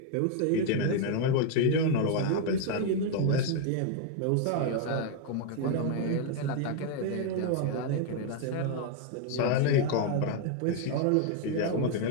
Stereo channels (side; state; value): both; different; correlation 0.00